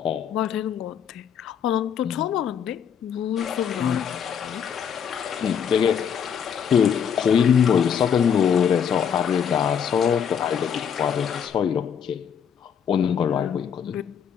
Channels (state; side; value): quieter; right; 7.8 dB